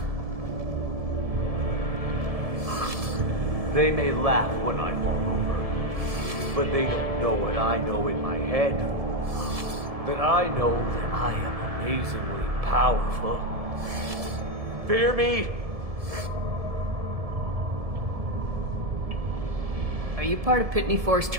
They may laugh when I fall over, but they don't know what I know in my head. That I know that I am amazingly powerful. Fear me? Are you part of Pitney 4's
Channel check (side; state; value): left; late; 1.7 ms